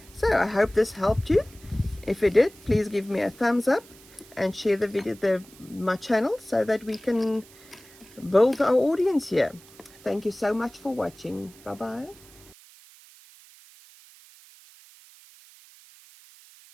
So I hope this helped you. If it did, please give me a thumbs up and share the video, my channel, so that we can build our audience here. Thank you so much for watching. Bye bye.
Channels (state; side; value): noise; right; hiss, 23 dB below the sound